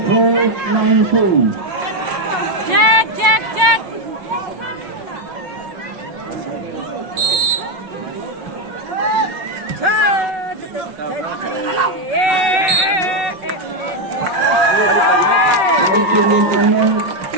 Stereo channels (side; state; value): left; late; 5.6 ms